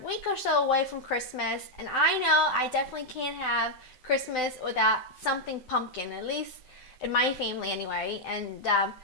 week or so away from Christmas, and I know I definitely can't have Christmas without something pumpkin, at least in my family anyway. And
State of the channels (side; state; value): right; late; 7.8 ms